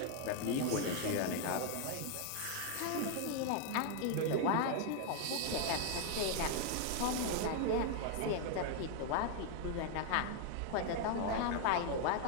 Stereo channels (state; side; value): different; both; correlation 0.00